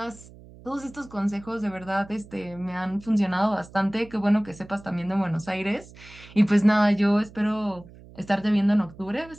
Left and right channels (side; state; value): right; noise; hum, 20 dB below the sound